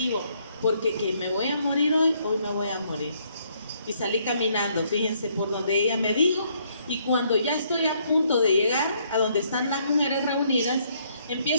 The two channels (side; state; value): both; inverted; correlation -0.69